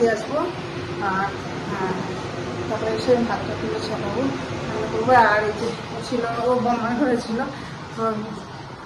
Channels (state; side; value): identical; both; correlation 1.00